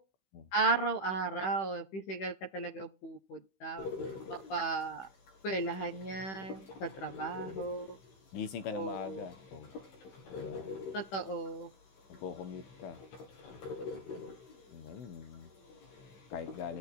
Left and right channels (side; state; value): right; late; 16 ms